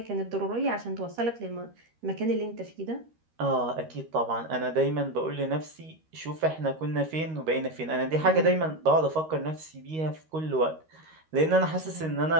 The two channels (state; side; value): late; left; 13 ms